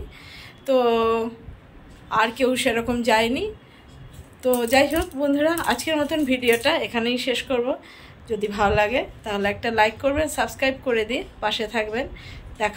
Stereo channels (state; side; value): identical; both; correlation 1.00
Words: তো আর কেউ সেরকম যায়নি। তো যাই হোক বন্ধুরা, আজকের মতন ভিডিওটা এখানেই শেষ করব। যদি ভালো লাগে তাহলে একটা লাইক করবেন, সাবস্ক্রাইব করে দিয়ে পাশে থাকবেন।